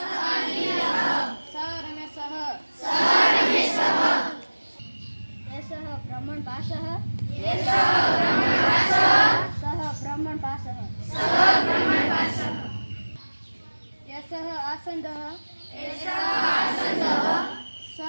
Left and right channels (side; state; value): both; inverted; correlation -1.00